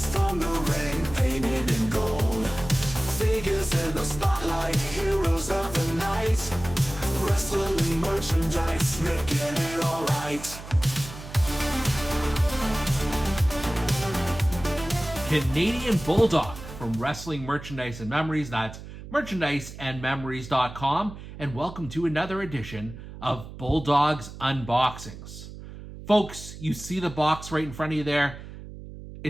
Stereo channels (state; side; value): noise; right; hum, 13 dB below the sound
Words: from the ring, painted in gold. Figures in the spotlight, heroes of the night. Wrestling merchandise, making it alright. Canadian Bulldog from Wrestling Merchandise and Memories. That's merchandiseandmemories.com. And welcome to another edition of Bulldog's Unboxings. Folks, you see the box right in front of you there.